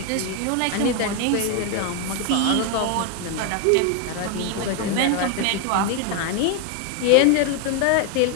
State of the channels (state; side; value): different; both; correlation 0.01